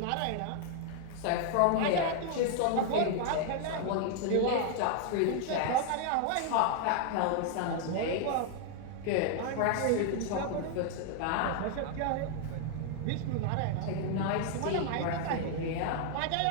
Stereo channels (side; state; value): both; different; correlation 0.00